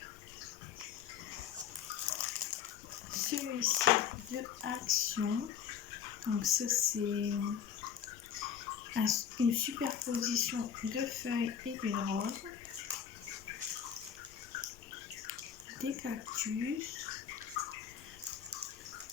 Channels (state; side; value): quieter; right; 8.2 dB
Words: celui-ci de Action. Donc ça c'est une superposition de feuilles et d'une rose, des cactus.